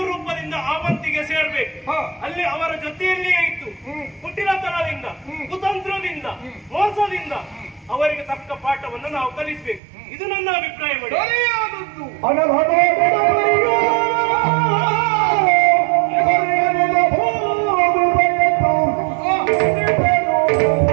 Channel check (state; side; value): drops out; left; at 9.8 s